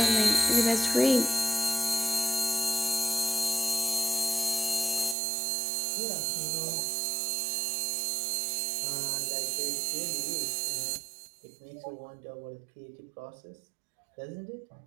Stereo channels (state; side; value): drops out; left; at 5.2 s